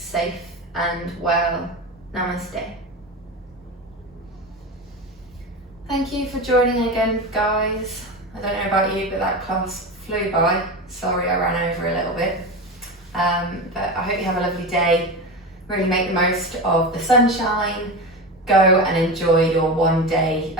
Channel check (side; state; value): both; normal; correlation 0.23